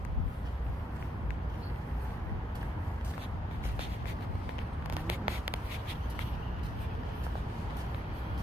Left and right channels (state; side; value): normal; both; correlation 0.76